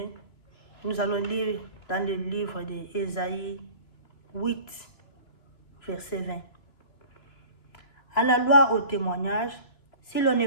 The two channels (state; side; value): late; right; 2.9 ms